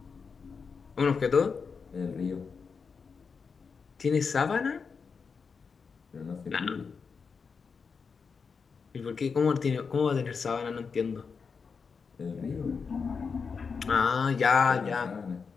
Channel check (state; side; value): quieter; right; 5.4 dB